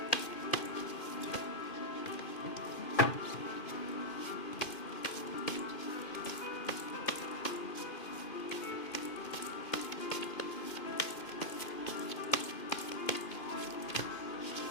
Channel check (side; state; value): right; late; 2.5 ms